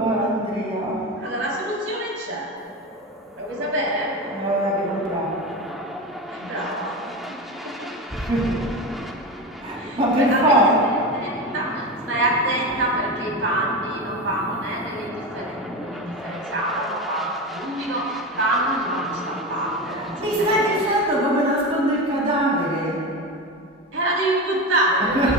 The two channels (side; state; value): both; normal; correlation 0.22